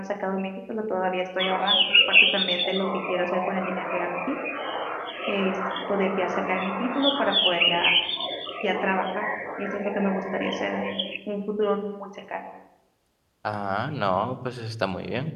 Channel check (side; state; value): both; identical; correlation 1.00